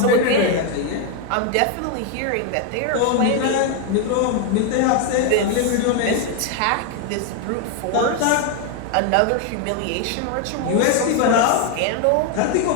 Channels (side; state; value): both; different; correlation 0.01